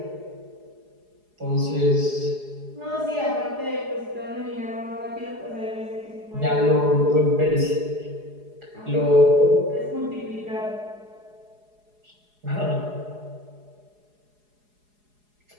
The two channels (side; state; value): left; late; 4.8 ms